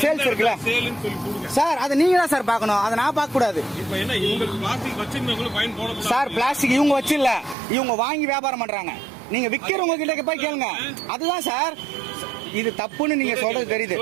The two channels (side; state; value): left; drops out; at 7.6 s